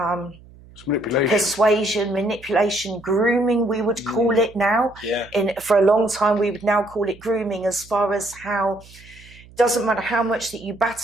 persuasion, manipulation, grooming, we would call it now. For a long time, we would now call it grooming, as far as how doesn't matter how much that you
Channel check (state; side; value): noise; right; hum, 23 dB below the sound